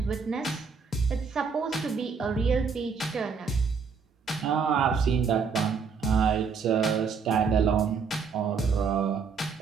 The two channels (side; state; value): left; quieter; 5.6 dB